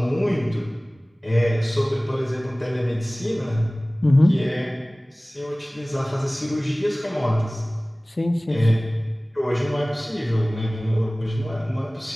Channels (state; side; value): normal; both; correlation 0.98